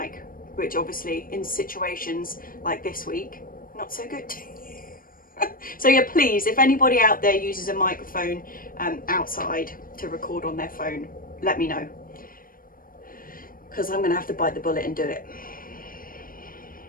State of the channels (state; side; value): late; right; 0.41 ms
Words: which obviously in situations like this week, not so good. So yeah, please, if anybody out there uses a microphone outside to record on their phone, let me know, because I'm going to have to bite the bullet and do it.